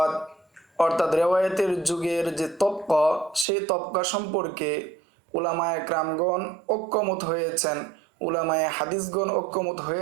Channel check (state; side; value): drops out; left; at 3.5 s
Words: অর্থাৎ রেওয়ায়াতের যুগের যে তবকা, সেই তবকা সম্পর্কে উলামায়ে কেরামগণ ঐক্যমত হয়েছেন, উলামায়ে হাদিসগণ ঐক্যমত